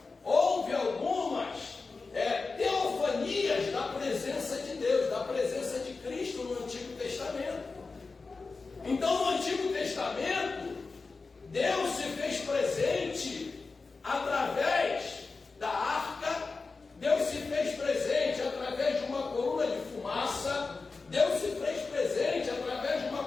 houve algumas teofanias da presença de Deus, da presença de Cristo no Antigo Testamento. Então, no Antigo Testamento, Deus se fez presente através da arca, Deus se fez presente através de uma coluna de fumaça, Deus se fez presente através de uma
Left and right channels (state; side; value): quieter; right; 4.1 dB